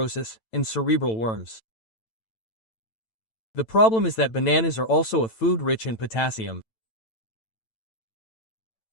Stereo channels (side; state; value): right; late; 9.0 ms